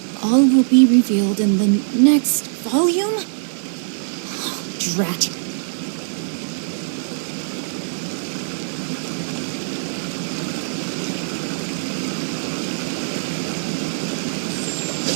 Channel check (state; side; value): silent; left; 60 dB below the other